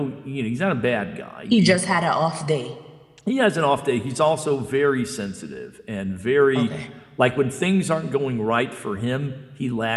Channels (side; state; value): both; identical; correlation 1.00